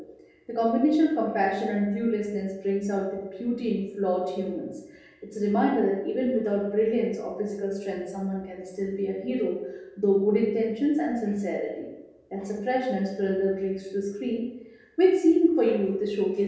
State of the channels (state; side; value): identical; both; correlation 1.00